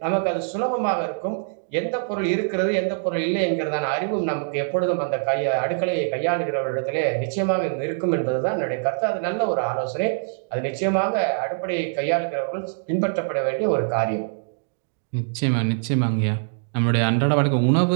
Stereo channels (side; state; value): left; silent; digital silence